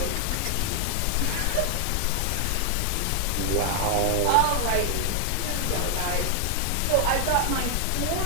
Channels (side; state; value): both; different; correlation 0.00